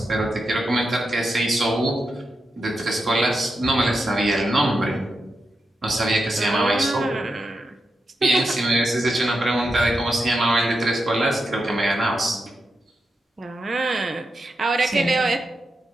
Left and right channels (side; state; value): both; normal; correlation 0.87